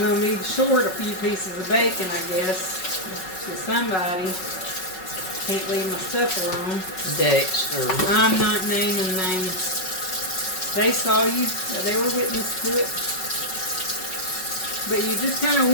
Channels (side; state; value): right; late; 5.3 ms